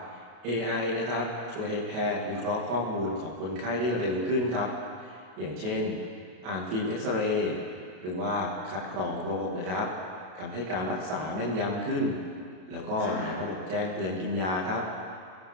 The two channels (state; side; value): late; left; 33 ms